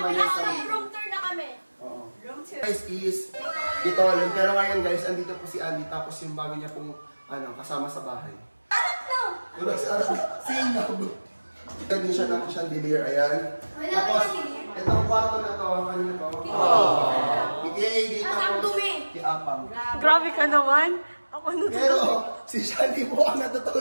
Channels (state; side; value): inverted; both; correlation -1.00